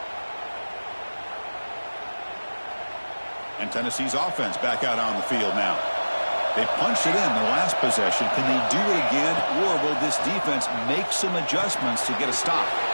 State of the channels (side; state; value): both; inverted; correlation -1.00